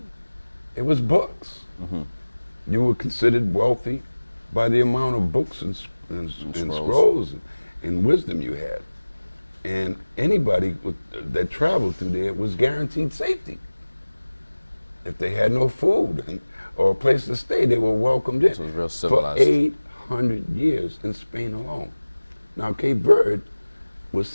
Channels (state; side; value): inverted; both; correlation -1.00